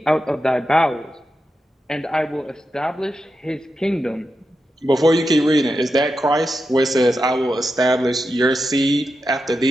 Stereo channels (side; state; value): both; normal; correlation 0.88